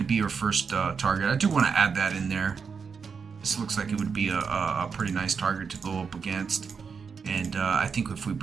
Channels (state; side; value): quieter; left; 5.8 dB